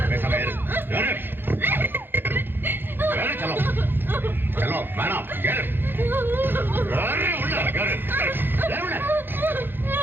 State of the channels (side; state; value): left; late; 0.099 ms